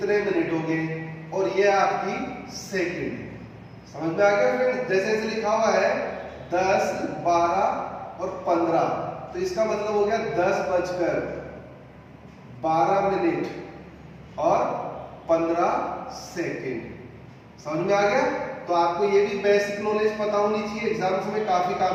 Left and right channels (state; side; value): identical; both; correlation 1.00